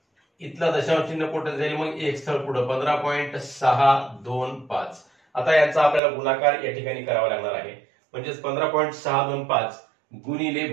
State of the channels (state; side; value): drops out; left; at 6.0 s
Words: इथला दशांश चिन्ह कुठे जाईल? मग 1 स्थळ पुढे, 15.625। आता याचा आपल्याला गुणाकार या ठिकाणी करावा लागणार आहे, म्हणजेच 15.625 गुणिले